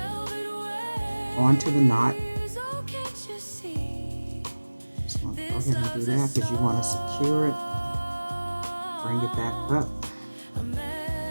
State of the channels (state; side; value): inverted; both; correlation -1.00